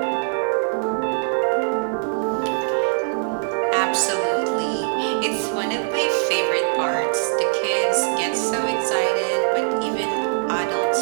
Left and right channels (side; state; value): left; silent; digital silence